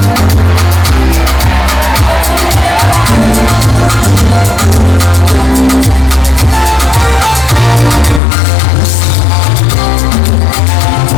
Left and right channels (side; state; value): right; drops out; at 8.2 s